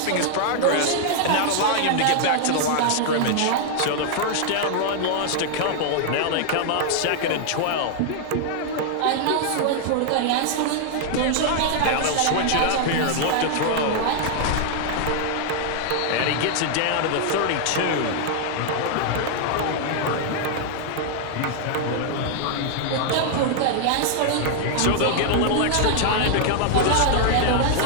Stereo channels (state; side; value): different; both; correlation 0.00